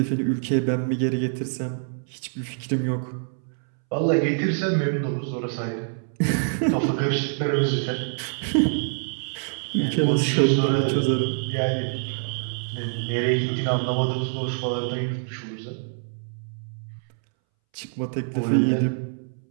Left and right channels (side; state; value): left; silent; 62 dB below the other